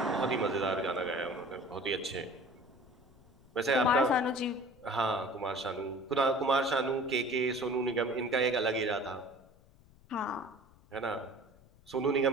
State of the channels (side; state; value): left; noise; rumble, 27 dB below the sound